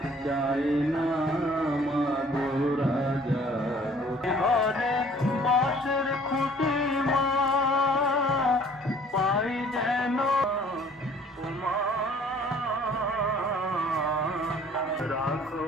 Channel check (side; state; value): both; normal; correlation 0.55